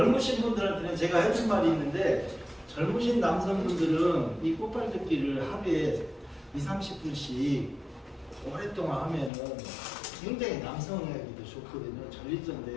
분들한테는 제가 해준 말이 있는데 젊으신 남성분들은 이 꽃발 딛기를 하루에 20-30분씩 오랫동안 하면은 굉장히 남성에게도 좋거든요. 전립선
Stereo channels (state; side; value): drops out; right; at 9.3 s